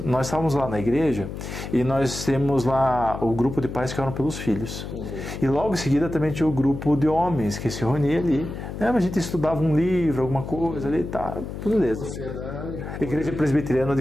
nós estávamos lá na igreja e nós temos lá o grupo de pais que oram pelos filhos. E logo em seguida também tinha o grupo de homens que se reunia ali. A gente estudava um livro, alguma coisa ali, tá, beleza. Você é da Igreja Presbiteriana de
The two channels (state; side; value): noise; left; hum, 8 dB below the sound